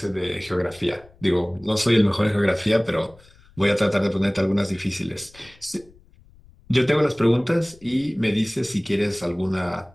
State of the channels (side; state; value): left; noise; rumble, 26 dB below the sound